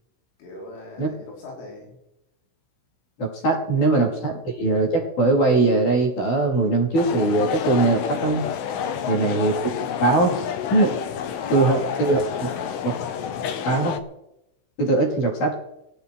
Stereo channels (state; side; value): late; right; 16 ms